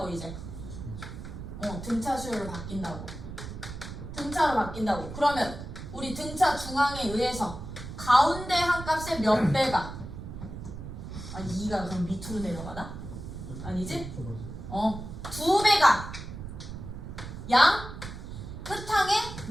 이제? 등차 수열로 바뀐다고. 등차로 바뀐다고. 그러면 우리 등차 중항에 의해서 가운데 한 값의 몇 배가? 2가 그럼 밑으로 내려가나? 아니지? 2배가 양 끝항에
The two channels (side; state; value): right; noise; rumble, 10 dB below the sound